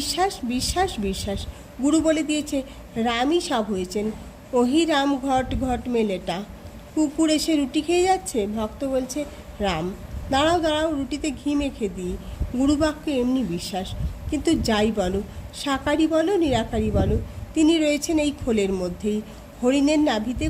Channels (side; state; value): both; identical; correlation 1.00